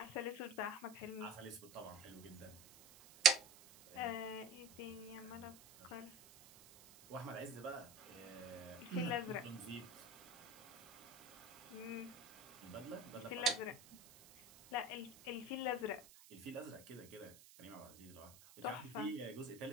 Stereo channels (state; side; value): noise; right; hiss, 19 dB below the sound